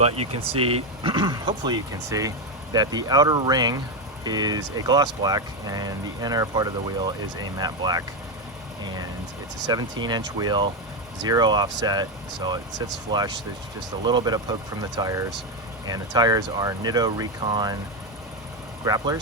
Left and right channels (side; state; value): both; normal; correlation 0.09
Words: you can see, hopefully you can see, that the outer ring is a gloss black and the inner part of the wheel is a matte black. And it's a 17-inch wheel, 0 offset, so it sits flush. There's just a little bit of poke from the tires, and the tires are Nitto Recon